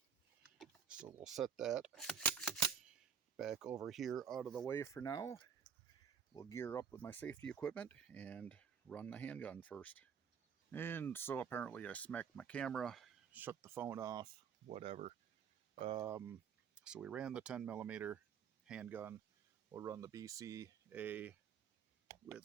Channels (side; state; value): left; quieter; 7.3 dB